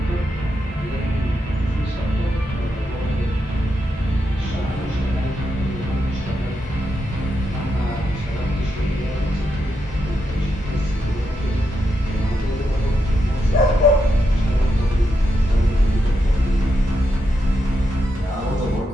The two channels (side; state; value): both; normal; correlation 0.83